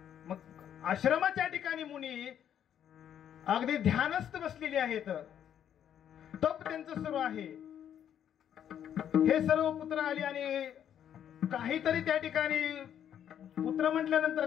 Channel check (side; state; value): right; quieter; 9.6 dB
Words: मग आश्रमाच्या ठिकाणी मुनी अगदी ध्यानस्थ बसलेले आहेत, तप त्यांचं सुरू आहे. हे सर्व पुत्र आले आणि काहीतरी त्या ठिकाणी, पुत्र म्हटल्यानंतर